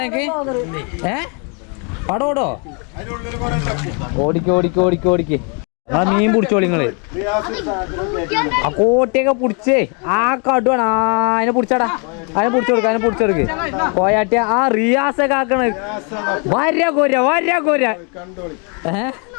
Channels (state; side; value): quieter; right; 36.5 dB